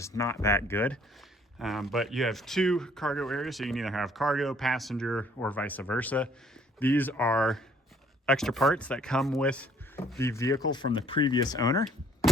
not that good. But you have two cargo areas, so you can either have cargo, passenger, or vice versa. These are extra parts that come with the vehicle from the previous owner.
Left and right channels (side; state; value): both; normal; correlation 0.60